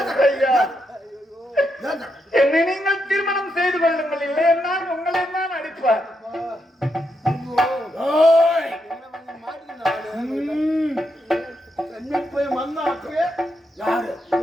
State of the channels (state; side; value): normal; both; correlation 0.82